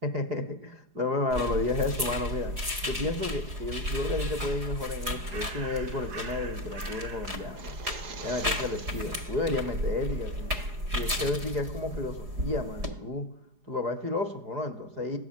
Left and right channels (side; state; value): left; late; 4.8 ms